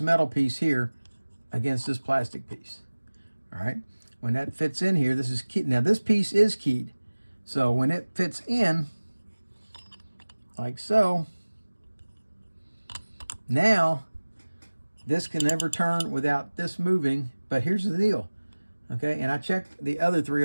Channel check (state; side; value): inverted; both; correlation -1.00